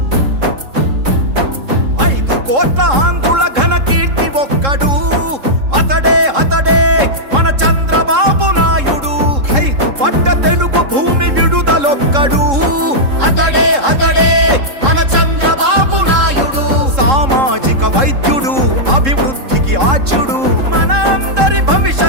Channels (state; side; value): late; left; 3.7 ms